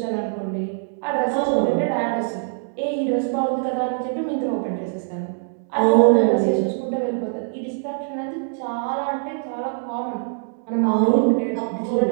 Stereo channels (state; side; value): silent; left; digital silence